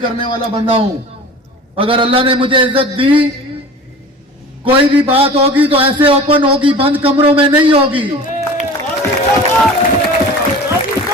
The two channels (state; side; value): normal; both; correlation 0.39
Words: वाला बंदा हूं। अगर अल्लाह ने मुझे इज्जत दी, कोई भी बात होगी तो ऐसे ओपन होगी, बंद कमरों में नहीं होगी।